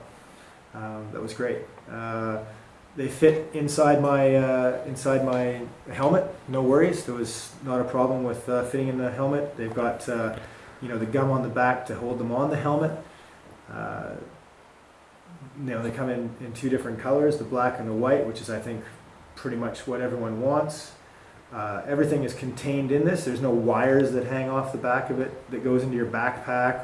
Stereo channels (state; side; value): identical; both; correlation 1.00